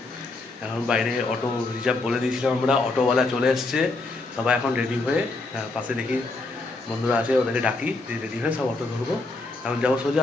এখন বাইরে অটো রিজার্ভ বলে দিয়েছিলাম আমরা, অটোওয়ালা চলে এসছে, সবাই এখন রেডি হয়ে পাশে দেখি বন্ধুরা আছে, ওদেরকে ডাকি, দিয়ে রেডি হয়ে সব অটো ধরবো। এখন যাবো সোজা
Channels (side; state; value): right; quieter; 3.3 dB